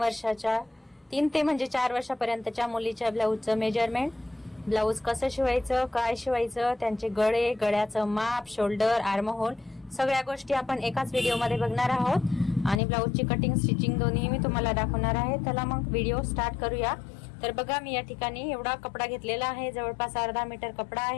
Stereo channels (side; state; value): right; drops out; at 12.8 s